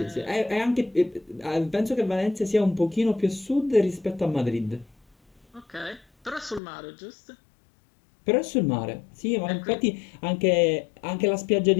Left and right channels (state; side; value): drops out; right; at 6.6 s